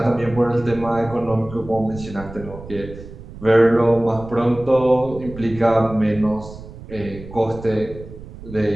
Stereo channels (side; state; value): right; noise; rumble, 15 dB below the sound